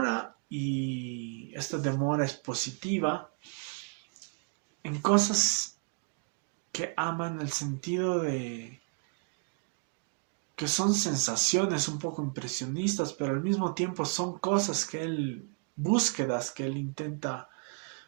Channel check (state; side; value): quieter; left; 38.4 dB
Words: y esta demora es positiva en cosas que aman el sentido de que son sensaciones un poco impresionistas, pero al mismo tiempo son cosas que él, búsquedas que él intenta